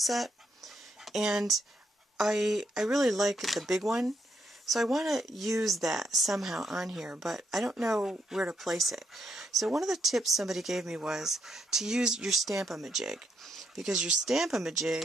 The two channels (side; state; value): both; normal; correlation 0.77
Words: And I really like the big one, so I want to use that somehow on here, but I don't know where to place it. So one of the tips somebody gave me was to use your Stamp-a-ma-jig, because your